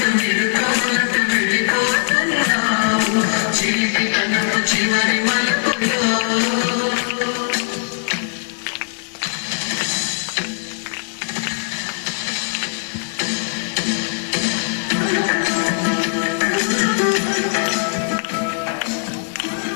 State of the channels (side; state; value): right; silent; digital silence